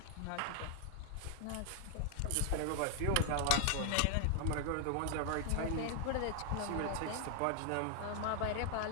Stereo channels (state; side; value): different; both; correlation 0.00